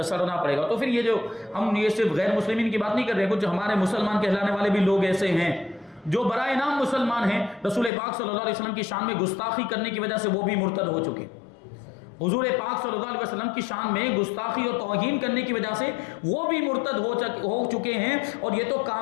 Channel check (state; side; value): drops out; right; at 7.9 s